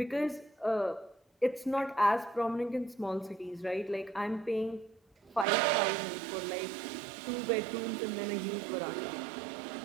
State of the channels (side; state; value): left; drops out; at 5.5 s